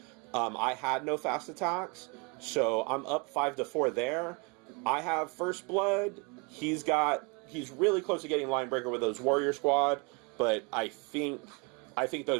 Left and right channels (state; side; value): quieter; left; 31.5 dB